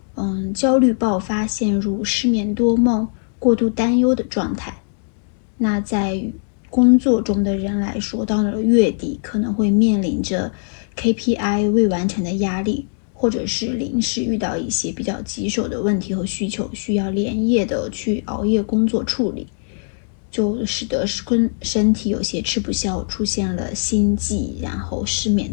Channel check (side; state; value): right; silent; digital silence